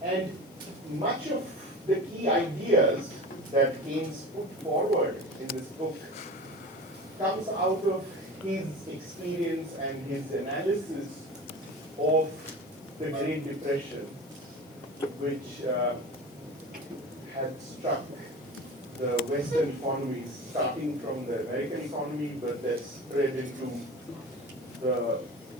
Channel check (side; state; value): left; noise; hiss, 26 dB below the sound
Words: And much of the key ideas that Keynes put forward in this book comes out of his experience and his analysis of the Great Depression, which had struck the Western economies, starting from the American economy, but that spread into the